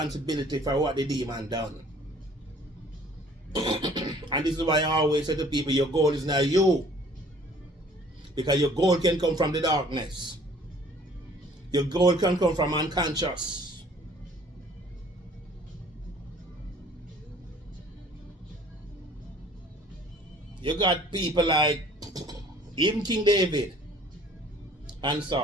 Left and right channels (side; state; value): both; normal; correlation 0.54